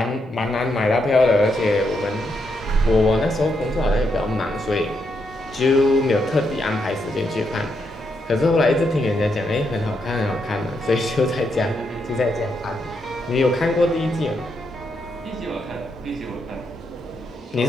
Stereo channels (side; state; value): both; normal; correlation 0.80